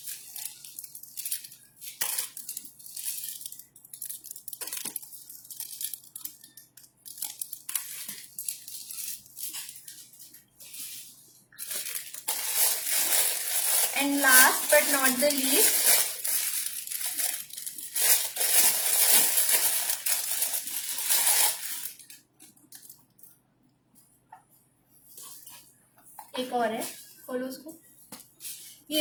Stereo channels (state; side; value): identical; both; correlation 1.00